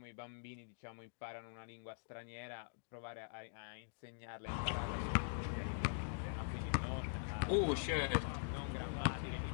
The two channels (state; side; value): silent; right; digital silence